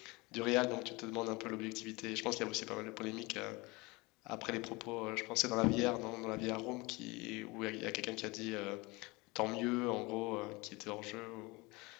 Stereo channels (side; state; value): right; quieter; 24.4 dB